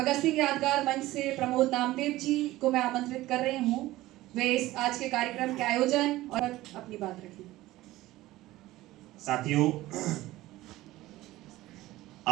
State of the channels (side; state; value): left; quieter; 17.0 dB